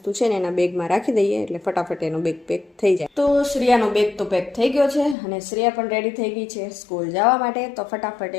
છે ને એના બેગમાં રાખી દઈએ એટલે ફટાફટ એનો બેગ પેક થઈ જાય. તો શ્રેયાનો બેગ તો પેક થઈ ગયો છે, અને શ્રેયા પણ રેડી થઈ ગઈ છે સ્કૂલ જવા માટે. તો ફટાફટ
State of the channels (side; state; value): right; drops out; at 5.2 s